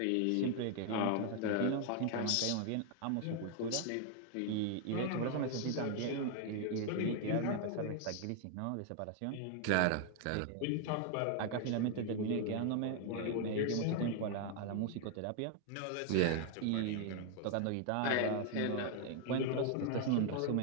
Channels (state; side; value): different; both; correlation 0.00